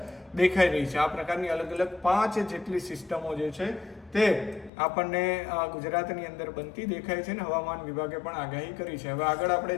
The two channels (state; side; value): drops out; right; at 4.7 s